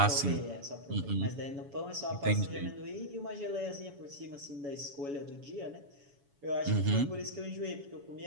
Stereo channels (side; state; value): left; late; 7.1 ms